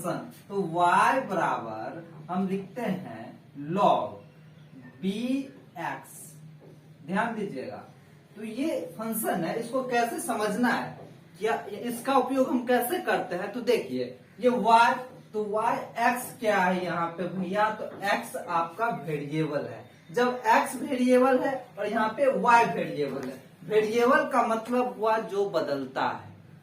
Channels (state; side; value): identical; both; correlation 1.00